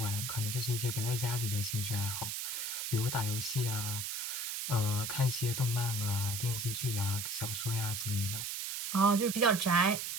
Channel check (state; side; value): noise; right; hiss, 3 dB below the sound